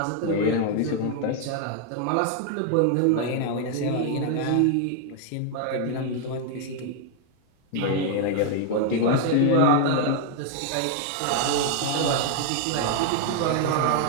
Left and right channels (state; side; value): different; both; correlation 0.00